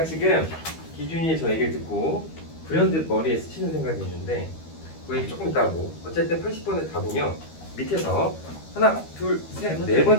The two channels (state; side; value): late; right; 13 ms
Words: 지금 기준이의 저 얘기를 듣고 불현듯 머리에 스치는 생각이 있는데 그 얘기 조금 이따 하고 어쨌든 80번의 답은요. 밑에서 하나, 둘, 셋, 네